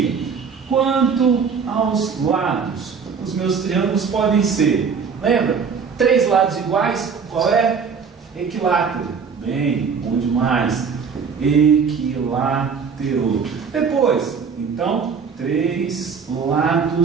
Quanto aos lados, os meus triângulos podem ser, lembra? Três lados iguais, qual é? Equilátero. Bem, bom demais. Equilátero. Depois, então, três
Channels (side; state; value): left; quieter; 5.9 dB